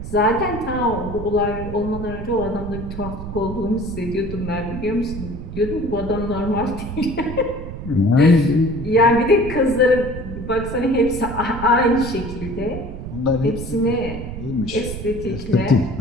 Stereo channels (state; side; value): noise; right; rumble, 9 dB below the sound